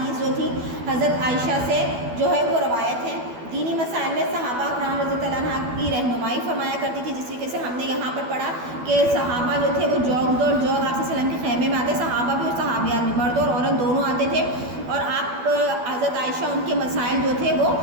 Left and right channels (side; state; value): left; late; 12 ms